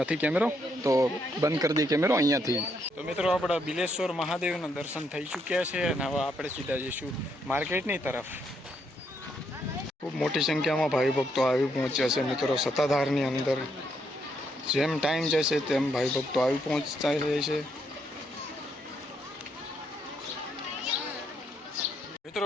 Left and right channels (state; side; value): normal; both; correlation 0.75